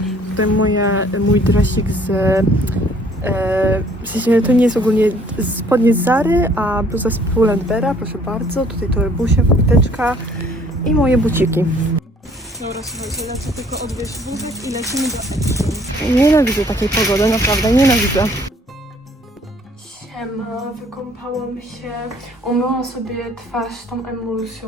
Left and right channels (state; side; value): normal; both; correlation 0.59